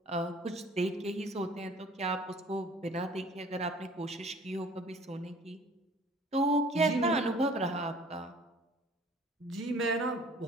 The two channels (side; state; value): both; normal; correlation 0.51